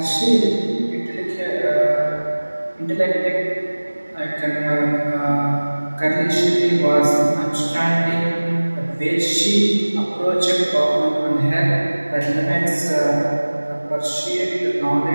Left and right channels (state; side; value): inverted; both; correlation -1.00